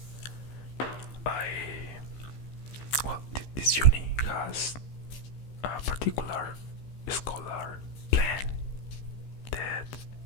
This uni has a particular scholar plan that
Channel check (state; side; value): late; right; 15 ms